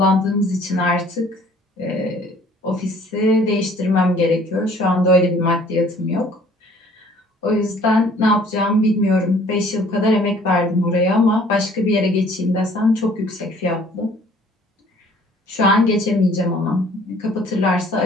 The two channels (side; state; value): both; normal; correlation 0.56